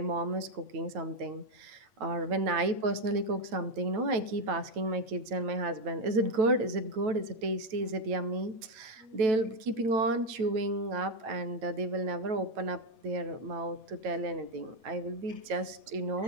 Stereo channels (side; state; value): left; late; 9.1 ms